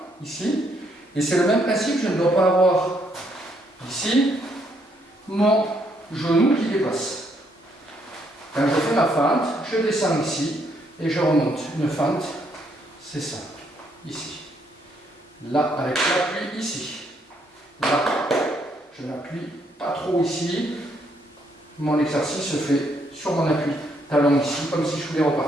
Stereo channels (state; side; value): normal; both; correlation 0.72